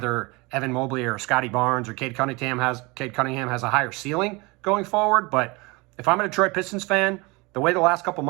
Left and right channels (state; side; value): quieter; left; 25.6 dB